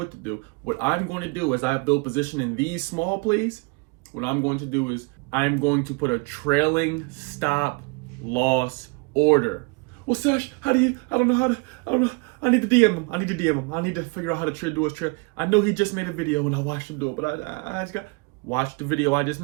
to do. What I'm going to do as I build position in these small plays, what I'm going to do is I'm going to put a trailing stop loss order. Well, Sesh, I don't know. I need to DM him. I need to figure out how to do his trade. I know he just made a video and I watched him do it, but I just got watch the video I just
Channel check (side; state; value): left; quieter; 30.8 dB